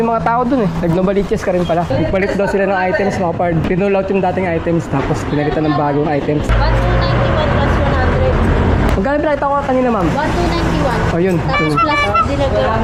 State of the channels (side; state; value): both; identical; correlation 1.00